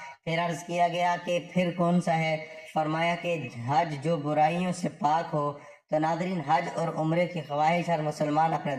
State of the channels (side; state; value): both; identical; correlation 1.00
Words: پھر عرض کیا گیا کہ پھر کون سا ہے؟ فرمایا کہ حج جو برائیوں سے پاک ہو۔ تو ناظرین، حج اور عمرے کی خواہش ہر مسلمان اپنے